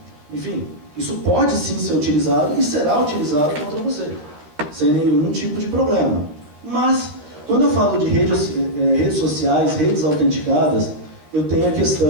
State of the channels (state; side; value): late; left; 13 ms